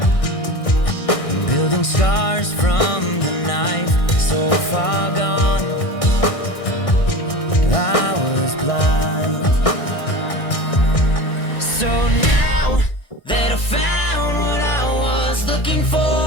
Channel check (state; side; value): late; right; 1.6 ms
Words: building scars from the knife, so far gone, I was blind. So now that I found what I was looking